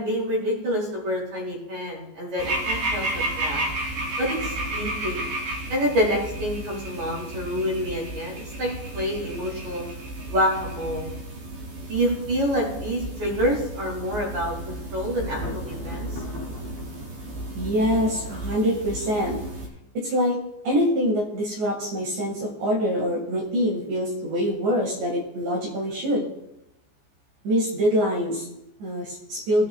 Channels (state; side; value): late; left; 14 ms